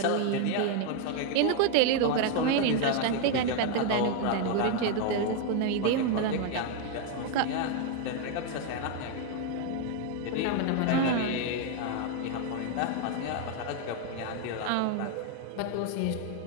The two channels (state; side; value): different; both; correlation 0.01